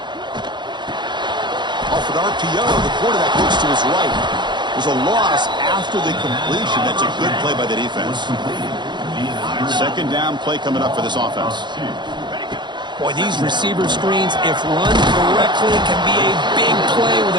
RPO, the quarterback looks to his right. There's a loss after the completion. That's a good play by the defense. Second down play coming up for this offense. Boy, these receiver screens, if run correctly, can be a big play with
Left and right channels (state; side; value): late; left; 0.22 ms